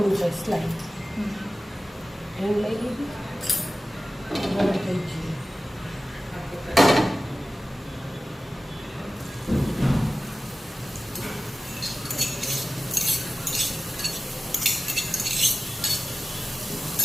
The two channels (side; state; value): both; normal; correlation 0.96